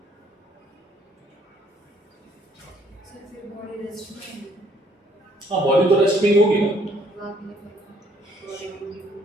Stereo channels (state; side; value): normal; both; correlation 0.64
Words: हाँ बॉडी तो रेस्ट में ही होगी ना,